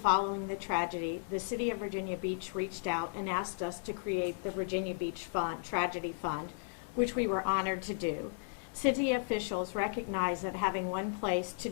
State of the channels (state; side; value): silent; right; digital silence